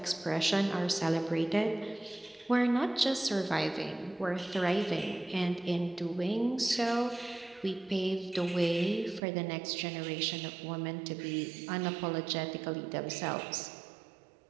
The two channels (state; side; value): drops out; left; at 9.2 s